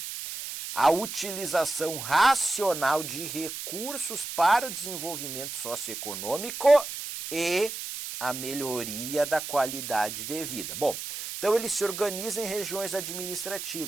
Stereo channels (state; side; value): noise; right; hiss, 7 dB below the sound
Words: a utilização racional de recursos para o desenvolvimento socioeconômico e a melhoria da qualidade de vida. Bom, então ele se organiza em regiões